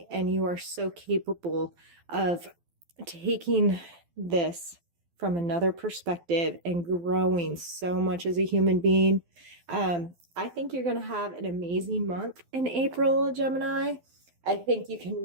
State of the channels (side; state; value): left; late; 12 ms